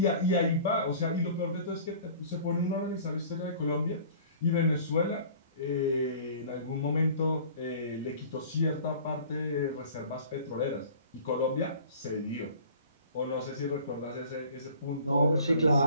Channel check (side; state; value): both; inverted; correlation -0.47